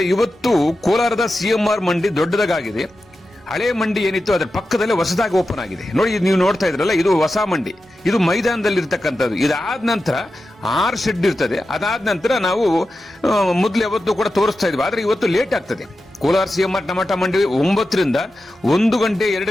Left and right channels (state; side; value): normal; both; correlation 0.92